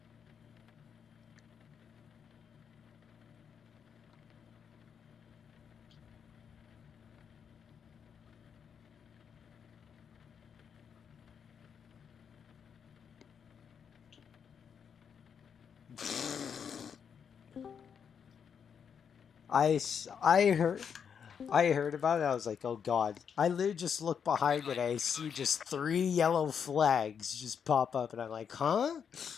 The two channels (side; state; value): right; quieter; 7.2 dB